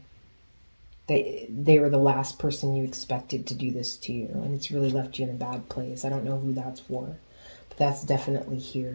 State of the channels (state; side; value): inverted; both; correlation -1.00